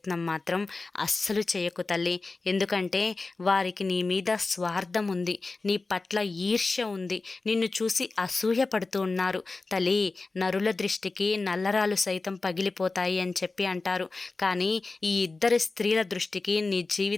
మాత్రం అస్సలు చేయకు తల్లి. ఎందుకంటే వారికి నీ మీద స్వార్థం ఉంది, నీ పట్ల ఈర్ష్య ఉంది, నిన్ను చూసి అసూయ పడుతూ ఉన్నారు. తల్లి, నరుల దృష్టికి నల్లరాలు సైతం పగిలిపోతాయి అని అంటారు. కానీ ఈ 2 స్త్రీల దృష్టికి నీ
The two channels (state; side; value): quieter; right; 3.7 dB